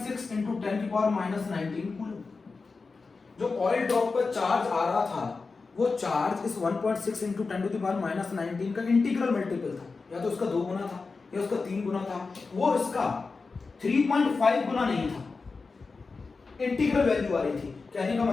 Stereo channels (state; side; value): quieter; right; 4.3 dB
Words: × 10⁻⁻19 कूलम। जो ऑयल ड्रॉप पर चार्ज आ रहा था वो चार्ज इस 1.6 × 10⁻⁻19 का इंटीग्रल मल्टीपल था, या तो उसका 2 गुना था, या उसका 3 गुना था, वो इसका 3.5 गुना नहीं था, इंटीग्रल वैल्यू आ रही थी। कहने का